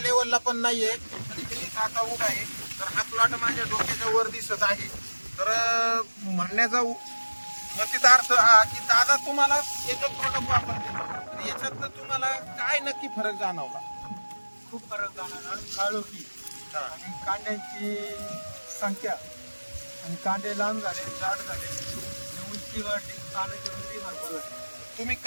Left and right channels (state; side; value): inverted; both; correlation -1.00